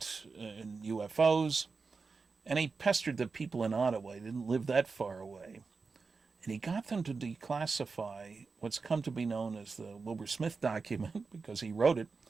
in UFOs. And he pestered the people in Ottawa. He didn't live that far away. And he got them to declassify what's come to be known as the Wilbert Smith document, because he wrote it,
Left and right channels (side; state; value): left; quieter; 4.6 dB